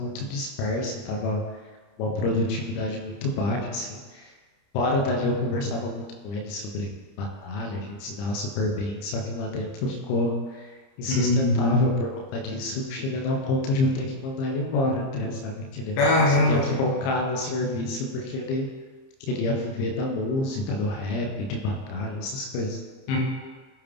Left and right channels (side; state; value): right; late; 30 ms